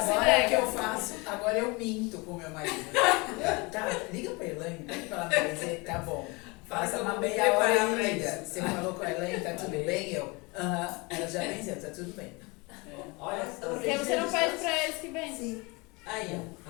Agora é que eu faço, agora eu minto com meu marido. Tá, liga pra Elaine, pede pra ela me dizer, tá bom. Faça uma meia hora e liga. Você falou com a Elaine, tá tudo bem? Eu, ela já venceu, tá tudo bem. Olha só. Porque você não pede pra eles que vêm. Sim. Aí, ó.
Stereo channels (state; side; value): quieter; right; 26.7 dB